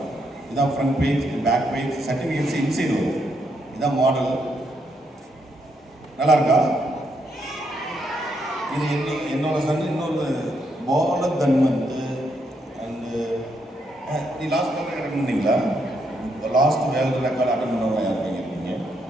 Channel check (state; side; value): normal; both; correlation 0.77